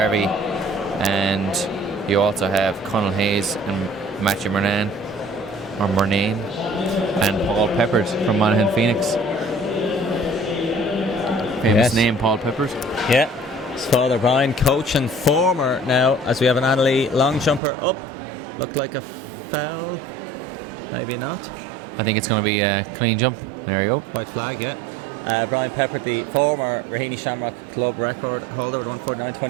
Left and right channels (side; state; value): left; drops out; at 17.6 s